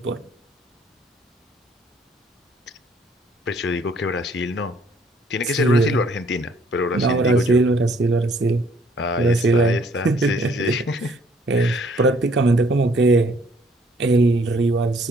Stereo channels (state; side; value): normal; both; correlation 0.63